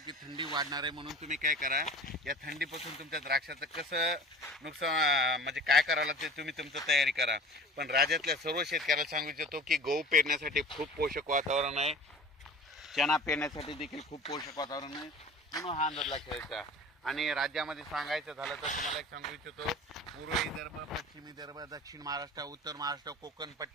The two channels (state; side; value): normal; both; correlation 0.40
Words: थंडी वाढणार आहे म्हणून तुम्ही काय करा, या थंडीपासून तुमच्या द्राक्षाचं कसं नुकसान म्हणजे काय करावं लागते तुम्ही तुमचं तयारी करा. पण राज्यातल्या सर्व शेतकऱ्याला सांगू इच्छितो की गहू पेरण्यासाठी खूप पोषक वातावरण आहे, चणा पेरण्यासाठी देखील खूप पोषक वातावरण आहे, म्हणून हा अंदाज लक्षात द्यायचा. आणि राज्यामध्ये सांगायचं झालं तर तुम्हाला एक सांगू इच्छितो, पूर्व विदर्भ, पश्चिम विदर्भ, दक्षिण महाराष्ट्र, उत्तर महाराष्ट्र, कोकण